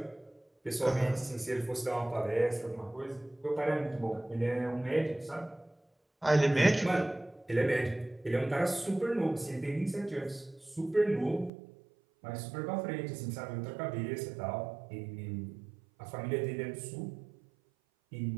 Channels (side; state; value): left; drops out; at 11.5 s